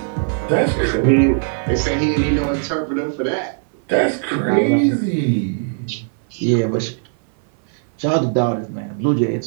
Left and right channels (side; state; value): left; silent; 59 dB below the other